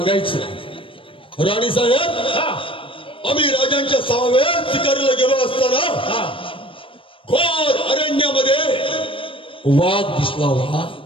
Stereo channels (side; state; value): right; late; 0.25 ms